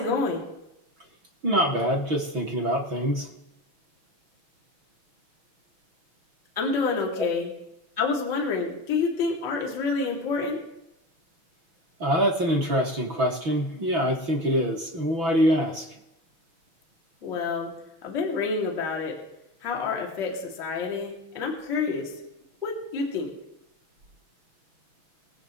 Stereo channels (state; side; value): late; left; 6.0 ms